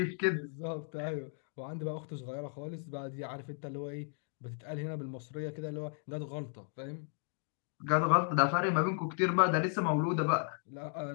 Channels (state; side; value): silent; right; 54 dB below the other